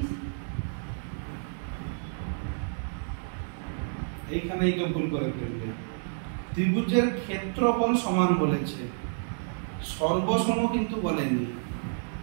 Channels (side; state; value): left; silent; 56 dB below the other